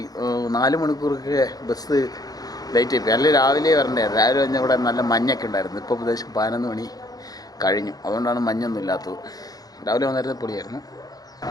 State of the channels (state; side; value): late; right; 0.18 ms